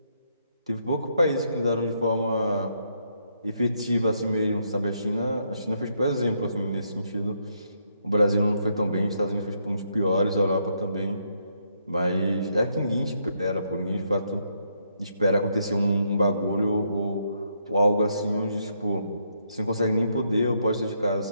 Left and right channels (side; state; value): both; inverted; correlation -0.76